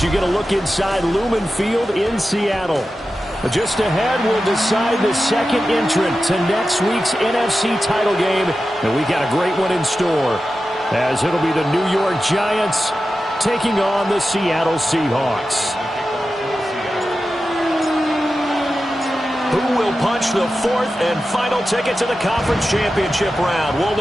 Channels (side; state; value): both; normal; correlation 0.92